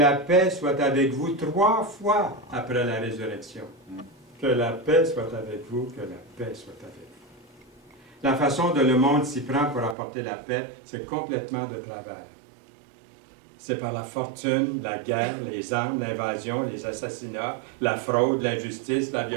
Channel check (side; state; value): left; drops out; at 10.0 s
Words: paix soit avec vous 3 fois après la résurrection. Que la paix soit avec vous, que la paix soit avec vous. La façon dont le monde s'y prend pour apporter la paix, c'est complètement de travers. C'est par la fortune, la guerre, les armes, l'invasion, les assassinats, la fraude, l'injustice, la